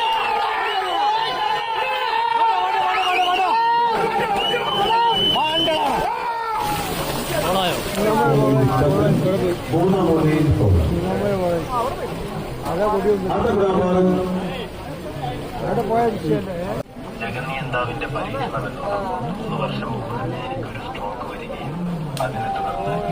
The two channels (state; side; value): identical; both; correlation 1.00